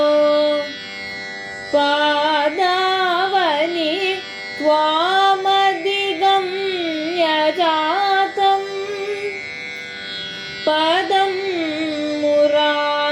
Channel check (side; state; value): both; identical; correlation 1.00